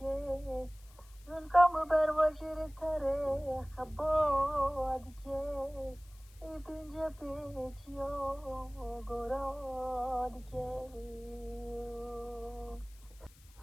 زنکام بر وجر تره خباد که ای پینجا پیچیا گراد که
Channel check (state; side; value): noise; left; hiss, 26 dB below the sound